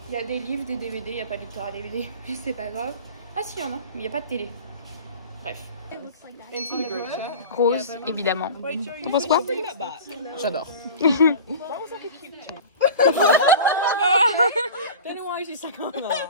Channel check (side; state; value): both; inverted; correlation -0.37